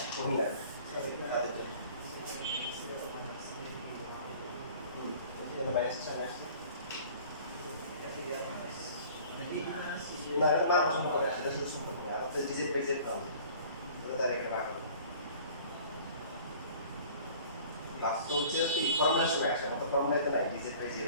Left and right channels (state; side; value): inverted; both; correlation -0.48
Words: কমই লাগে এখানে মাইনাস সামনে আসছে না এটা মান সম্পর্ক সেটা শুধু সম্পর্ক না আমাদের ডিজিট বাই জেড পাবো এটা তার একটা ভাগ হবে বাস্তব হচ্ছে কি ফর্মুলার সময় আসে আমাদের ফর্মুলাতে নাই ডিজিট বাই জেড